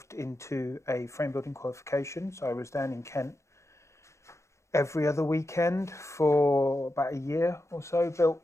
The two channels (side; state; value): right; late; 0.14 ms